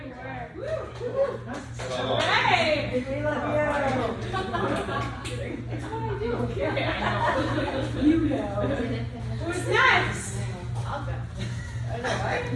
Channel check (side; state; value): both; identical; correlation 1.00